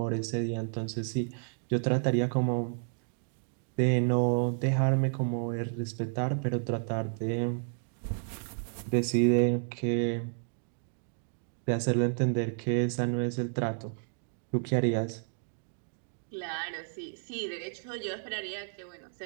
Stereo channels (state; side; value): silent; left; digital silence